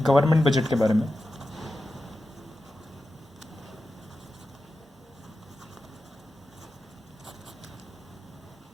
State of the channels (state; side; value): normal; both; correlation 0.92